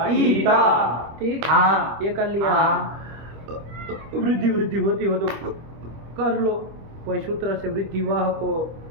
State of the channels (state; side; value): late; left; 25 ms